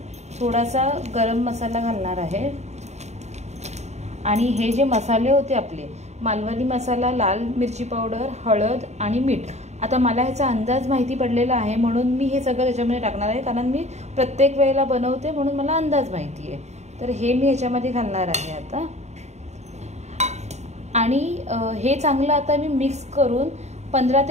थोडासा गरम मसाला घालणार आहे. आणि हे जे मसाले होते आपले, मालवणी मसाला, लाल मिरची पावडर, हळद आणि मीठ, आता मला ह्याचा अंदाज माहिती पडलेला आहे म्हणून मी हे सगळं त्याच्यामध्ये टाकणार आहे, कारण मी प्रत्येक वेळेला बनवते म्हणून मला अंदाज माहिती आहे. तर हे मी ह्याच्यामध्ये घालणार आहे आता. आणि हे चांगलं आता मी मिक्स करून 15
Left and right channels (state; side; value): late; left; 0.32 ms